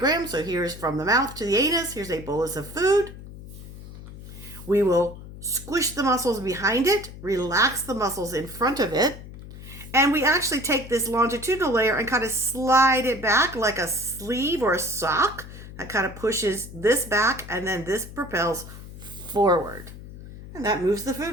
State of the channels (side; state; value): left; noise; hum, 14 dB below the sound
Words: So here's from the mouth to the anus. Here's a bolus of food. We will squish the muscles behind it, relax the muscles in front of it, and we actually take this longitudinal layer and kind of slide it back like a sleeve or a sock. That kind of pushes this back, and then this propels forward. And that moves the